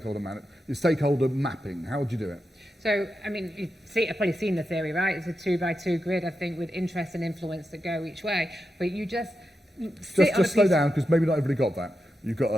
mapping? How would you do it? So, I mean, I've probably seen the theory, right? It's a 2x2 grid, I think, with interest and influence that go each way. But you just slow down, because maybe not everybody got that. You've got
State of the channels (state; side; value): normal; both; correlation 0.88